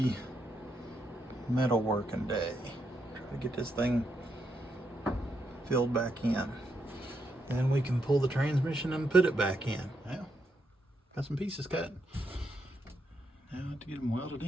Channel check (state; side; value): normal; both; correlation 0.80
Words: metal working day. Try to get this thing filled back in. Then we can pull the transmission and put it back in. Well, got some pieces cut. Now I have to get them welded